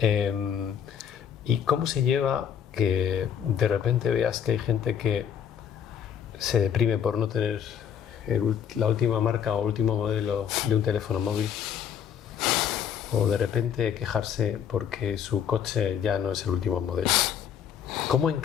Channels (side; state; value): right; quieter; 8.4 dB